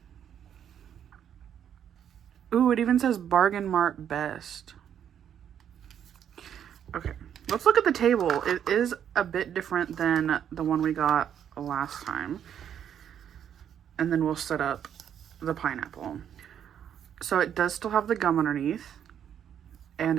Ooh, it even says Bargain Mart Best. Okay, let's look at the table. It is a bit different than the one we got last time. And then we'll set up the pineapple. So it does still have the gum underneath. And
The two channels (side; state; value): left; quieter; 9.2 dB